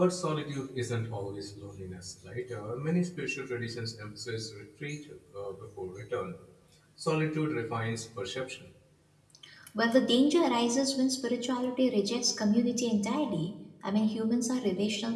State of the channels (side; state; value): both; identical; correlation 1.00